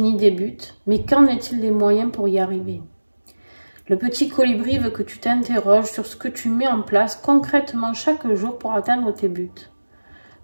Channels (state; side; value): inverted; both; correlation -1.00